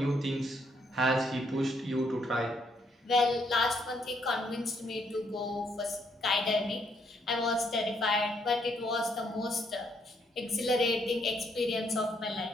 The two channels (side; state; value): both; normal; correlation 0.72